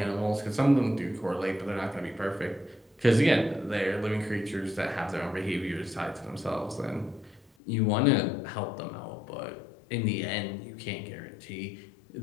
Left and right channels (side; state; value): right; drops out; at 7.5 s